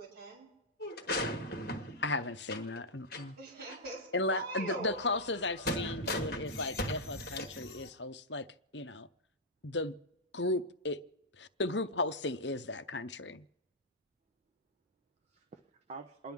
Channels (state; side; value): normal; both; correlation -0.06